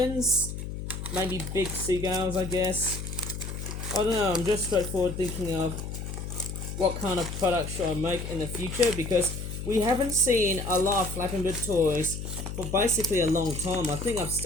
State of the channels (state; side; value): noise; left; hum, 7 dB below the sound